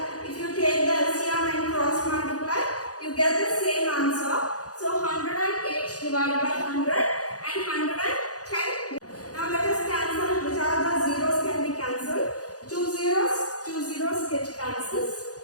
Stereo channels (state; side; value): late; right; 0.67 ms